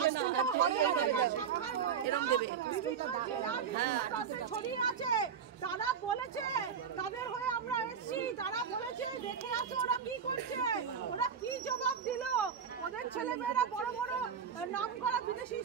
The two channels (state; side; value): quieter; left; 7.2 dB